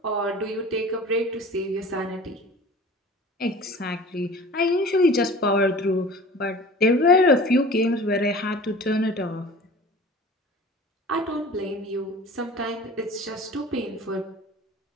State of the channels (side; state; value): both; normal; correlation 0.41